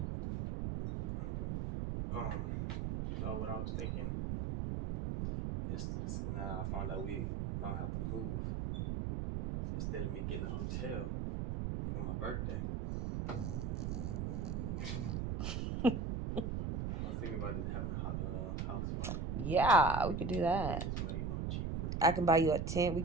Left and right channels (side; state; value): right; noise; rumble, 1 dB below the sound